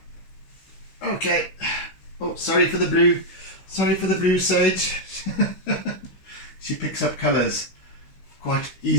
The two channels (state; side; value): late; right; 16 ms